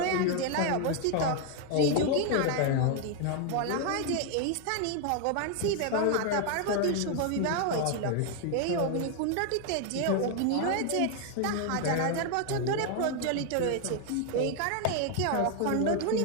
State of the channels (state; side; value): different; both; correlation 0.00